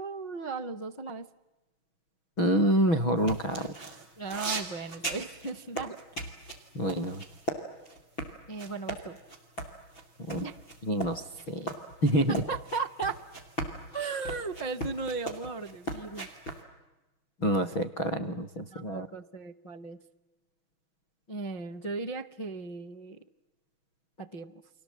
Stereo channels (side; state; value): right; late; 6.3 ms